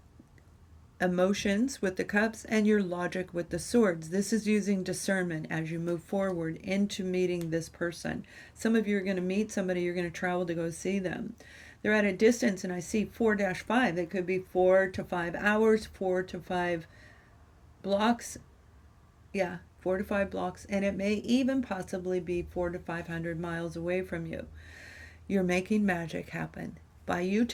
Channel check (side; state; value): both; identical; correlation 1.00